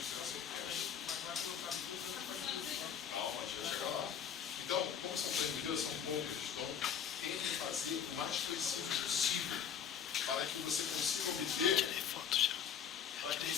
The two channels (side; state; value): right; quieter; 8.1 dB